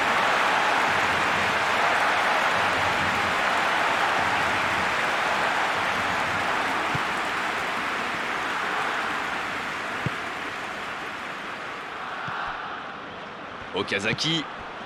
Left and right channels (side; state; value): both; identical; correlation 1.00